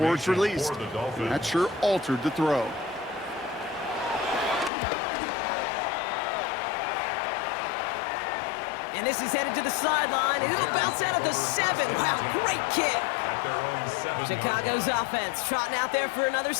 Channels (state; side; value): drops out; right; at 4.7 s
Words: it's released. And that sure altered the throw. And this is headed to the sideline, and it'll bounce out at the 7. Wow, great kick. Chicago's offense trotting out there for another